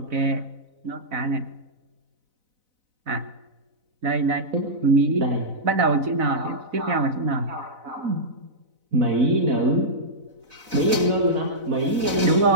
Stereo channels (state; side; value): late; left; 4.0 ms